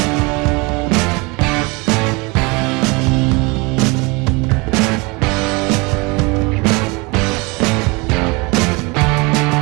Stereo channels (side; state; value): left; quieter; 27.1 dB